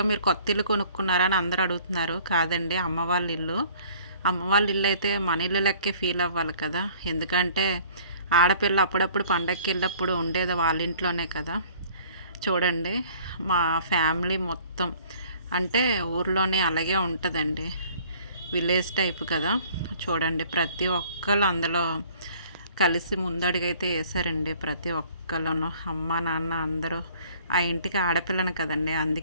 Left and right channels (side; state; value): both; inverted; correlation -0.53